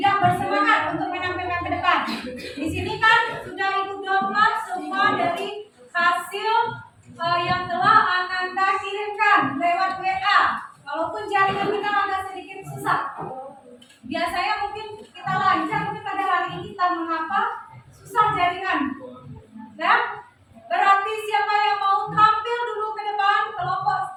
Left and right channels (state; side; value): identical; both; correlation 1.00